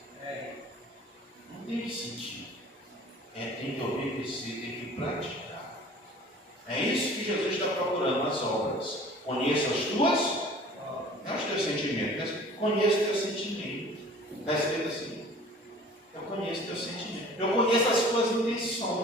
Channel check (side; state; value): both; normal; correlation 0.47